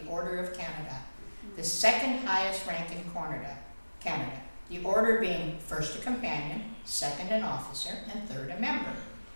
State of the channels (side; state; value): both; inverted; correlation -1.00